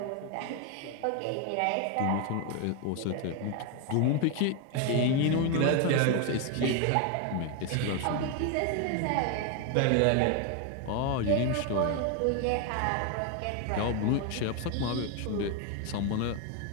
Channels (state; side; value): different; both; correlation 0.01